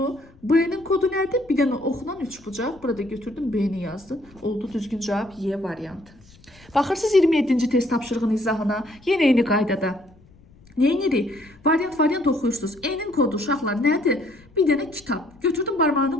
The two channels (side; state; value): left; noise; rumble, 27 dB below the sound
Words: B-nin kodu nədir? Bir dənə oxla 3 bucaq. Burada götürdüm B-ni yazdım. Oldu düzgün cavab Y variantı. Baxırsınız 27-ci test tapşırığının izahına. Yenə eyni qaydada. Neyinirik? Variant oxuyursunuz. E-nin kodu uşaqlar nədir? Bir dənə kitab. Götürdüm